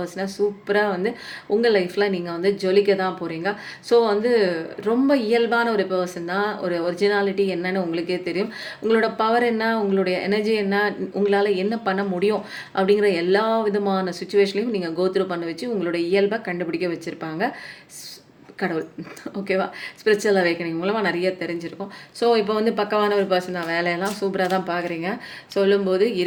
சூப்பராக வந்து உங்கள் லைஃப்பில் நீங்கள் வந்து ஜொலிக்க தான் போகிறீங்க. ஸோ வந்து ரொம்ப இயல்பான ஒரு பர்சன் தான். ஒரு ஒரிஜினாலிட்டி என்னன்னு உங்களுக்கே தெரியும். உங்களோட பவர் என்ன, உங்களுடைய எனர்ஜி என்ன, உங்களால் என்ன பண்ண முடியும் அப்படிங்கிற எல்லா விதமான சுச்சுவேஷன்லையும் நீங்கள் கோத்ரூ பண்ண வச்சு உங்களோட இயல்பை கண்டுபிடிக்க வச்சுருப்பாங்க கடவுள். ஓகேவா? ஸ்பிரிச்சுவல் அவேக்கனிங் மூலமாக நிறைய தெரிஞ்சிருக்கும். ஸோ இப்போ வந்து பக்கவான ஒரு பர்சன் தான், வேலையெல்லாம் சூப்பராக தான் பார்க்குறீங்க. சொல்லும்போது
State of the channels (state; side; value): identical; both; correlation 1.00